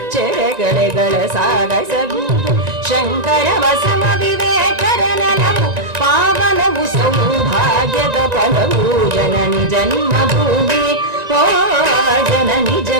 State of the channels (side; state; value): left; late; 1.9 ms